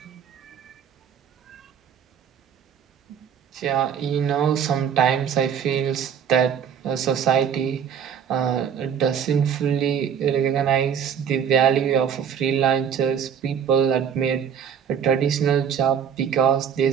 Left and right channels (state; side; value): quieter; left; 7.9 dB